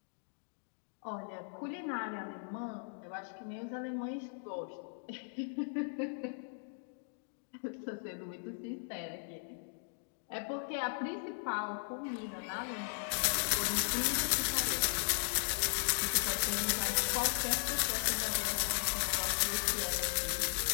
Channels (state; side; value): silent; right; digital silence